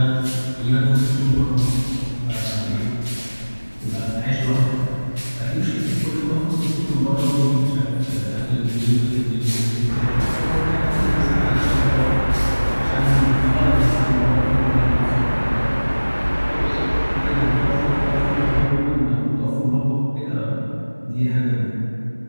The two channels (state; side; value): inverted; both; correlation -1.00